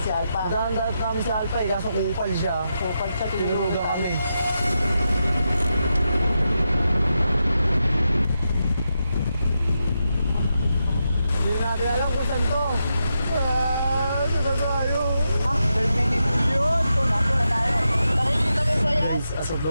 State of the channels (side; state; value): both; inverted; correlation -0.86